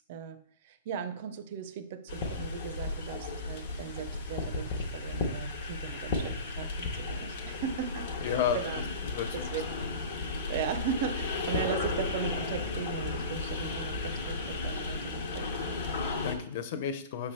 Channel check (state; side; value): inverted; both; correlation -0.34